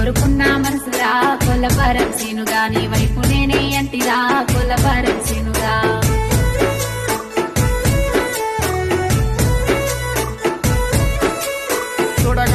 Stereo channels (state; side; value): identical; both; correlation 1.00